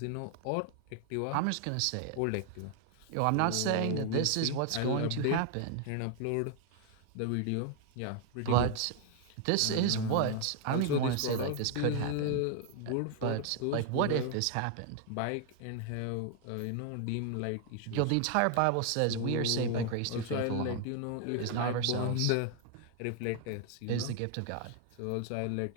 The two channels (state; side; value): different; both; correlation 0.00